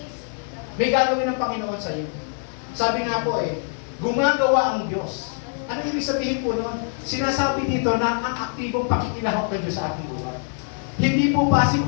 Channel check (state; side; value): silent; right; 55 dB below the other